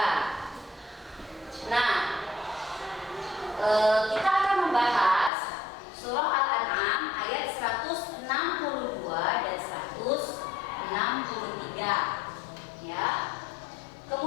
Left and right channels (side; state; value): right; drops out; at 5.3 s